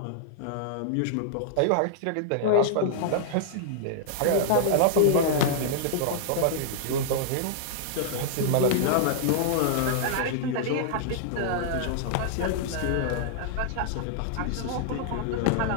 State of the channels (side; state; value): both; different; correlation -0.01